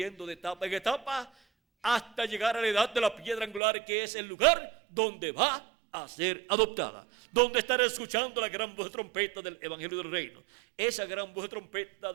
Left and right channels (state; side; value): drops out; left; at 3.6 s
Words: de etapa en etapa hasta llegar a la edad de la piedra angular, que es el lugar donde va a ser adoptada, donde estará escuchando la gran voz de trompeta del Evangelio del Reino, esa gran voz de trompeta